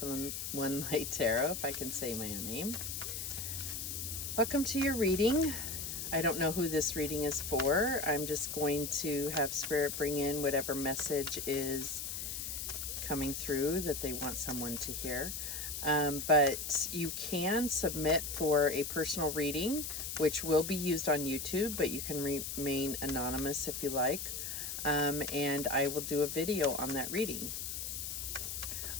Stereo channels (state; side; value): noise; left; hiss, 5 dB below the sound